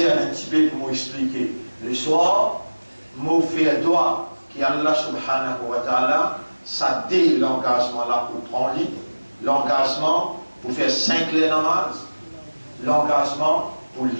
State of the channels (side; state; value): both; inverted; correlation -1.00